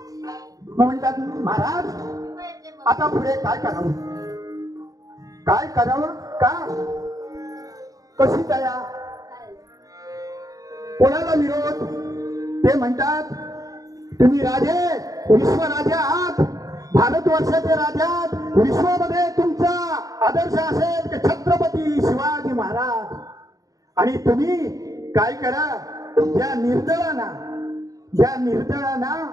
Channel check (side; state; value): left; late; 0.17 ms